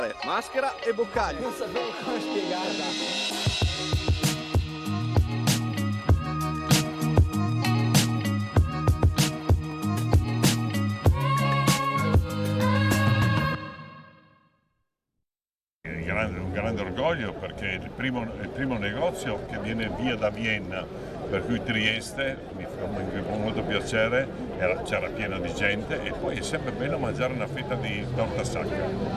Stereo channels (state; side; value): identical; both; correlation 1.00